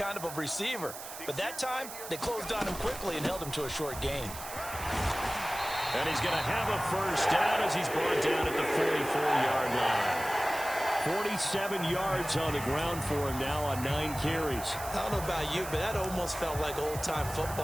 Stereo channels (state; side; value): noise; right; hiss, 11 dB below the sound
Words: of a receiver. But that time, they closed on him quickly and held him to a short gain. And he's going to have a 1st down as he's brought down at the 44-yard line. 47 yards on the ground for him now on 9 carries. I don't know about you, but that almost felt like old-time